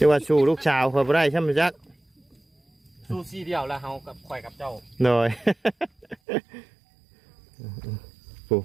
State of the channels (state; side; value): drops out; left; at 6.2 s